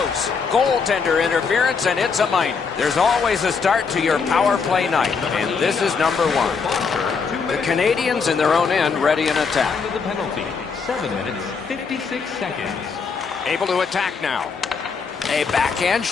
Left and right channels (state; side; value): quieter; right; 5.4 dB